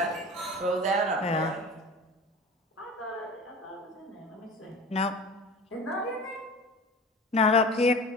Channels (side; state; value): both; normal; correlation 0.37